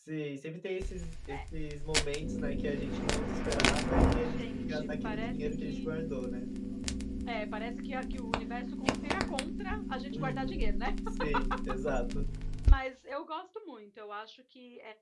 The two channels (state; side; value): identical; both; correlation 1.00